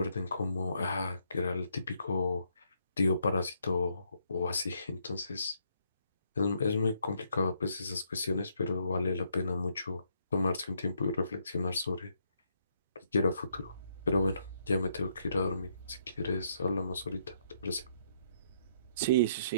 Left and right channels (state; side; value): inverted; both; correlation -0.72